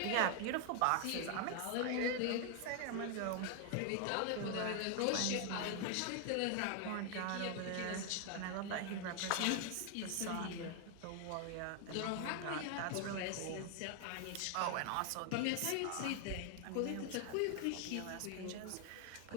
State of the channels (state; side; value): different; both; correlation 0.00